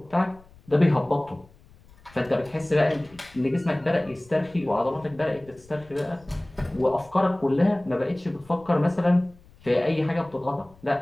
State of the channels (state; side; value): noise; left; rumble, 26 dB below the sound